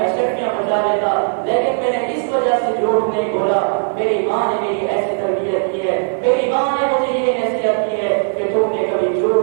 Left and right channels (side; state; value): left; silent; digital silence